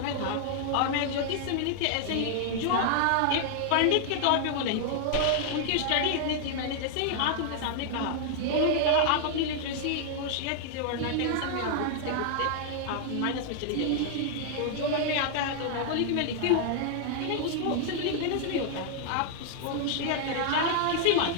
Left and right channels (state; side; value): different; both; correlation 0.00